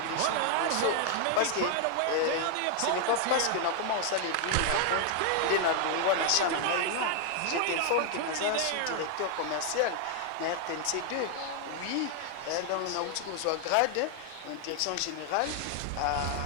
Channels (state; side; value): different; both; correlation 0.00